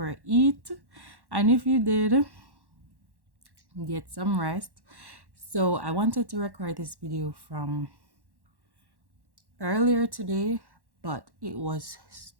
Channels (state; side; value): late; left; 1.1 ms